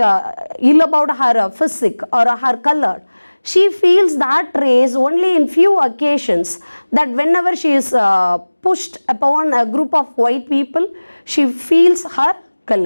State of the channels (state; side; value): inverted; both; correlation -1.00